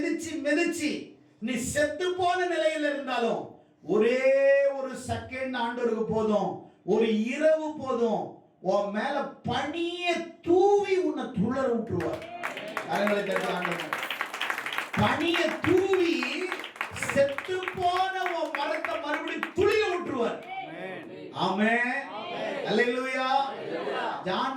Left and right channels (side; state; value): both; identical; correlation 1.00